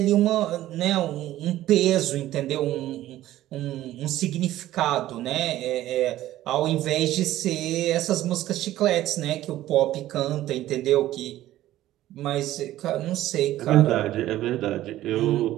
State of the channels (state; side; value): quieter; left; 14.4 dB